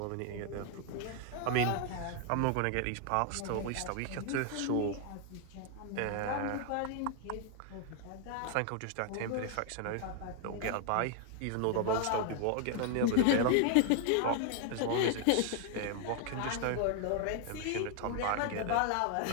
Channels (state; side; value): different; both; correlation 0.00